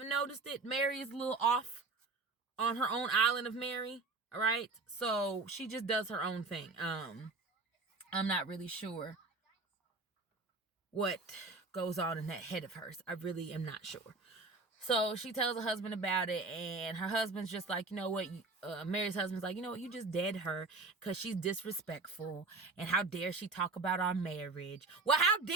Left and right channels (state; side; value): quieter; left; 3.7 dB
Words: noticed it, Mary is a little off on her own island of Mary. All right, so she just does her own thing. I'm not really sure what goes on in that head of hers. I really am not sure. So she tells her husband about it, and her husband's just like, you know what? Mary's husband's like, you know what? You just dead her because she's disrespectful, and how dare she talk about our marriage? Well, how